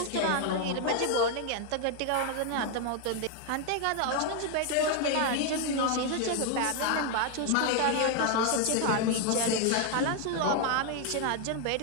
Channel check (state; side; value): different; both; correlation 0.01